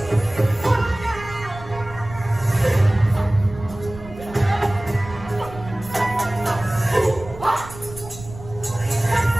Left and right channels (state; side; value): noise; right; rumble, 15 dB below the sound